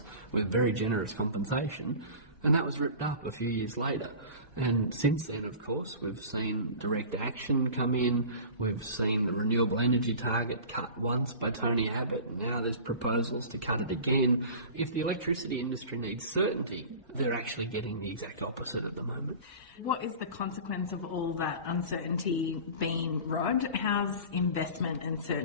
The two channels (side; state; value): both; inverted; correlation -0.37